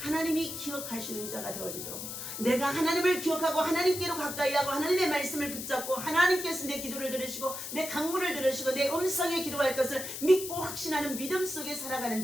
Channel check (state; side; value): noise; left; hiss, 7 dB below the sound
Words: 하나님이 기억하시는 자가 되어지도록 내가 하나님을 기억하고 하나님께로 가까이 하고 하나님의 말씀을 붙잡고 하나님께서 내 기도를 들으시고 내 간구를 들으시고 내 음성에 기도할 것을 믿고 확신하는 믿음 속에 살아가는